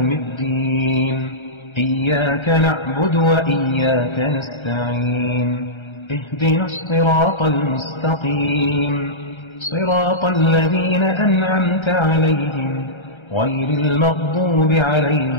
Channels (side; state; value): right; late; 1.3 ms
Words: الدين، إياك نعبد وإياك نستعين، اهدنا الصراط المستقيم، صراط الذين أنعمت عليهم غير المغضوب